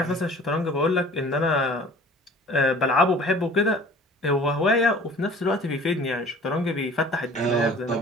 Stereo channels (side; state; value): both; normal; correlation 0.47